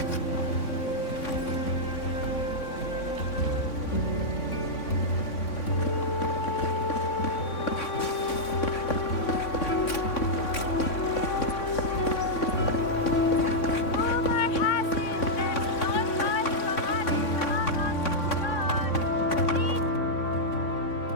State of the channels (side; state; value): right; late; 3.6 ms